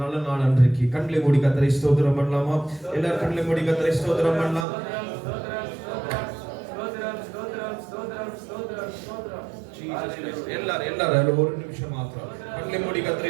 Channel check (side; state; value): left; drops out; at 4.7 s